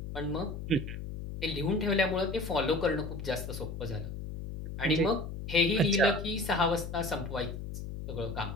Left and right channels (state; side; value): noise; left; hum, 7 dB below the sound